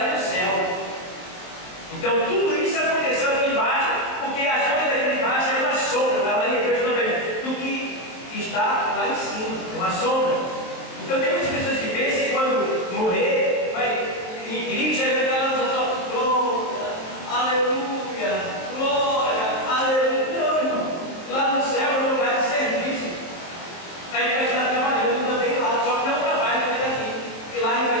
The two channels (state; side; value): late; right; 23 ms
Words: no céu. Então tudo isso aconteceu aqui embaixo, porque as coisas aqui embaixo é uma sombra, está lá em Hebreus também, do que está lá em cima, é uma sombra. Então tem muitas pessoas que pensam que quando morrer, vai em Cristo, vai ficar lá só, glória, aleluia, glória, aleluia. Não, irmão, lá no céu é um lugar de serviço. Aí vai estar trabalhando também lá, só que não trabalha feito aqui, porque lá a gente vai